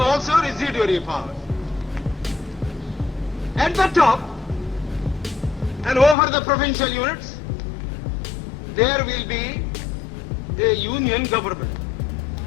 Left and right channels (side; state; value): right; drops out; at 6.2 s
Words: also residuary powers. At the top and over the provincial units, there will be a union government